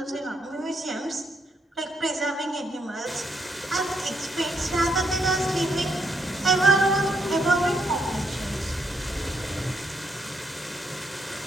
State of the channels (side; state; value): both; normal; correlation 0.75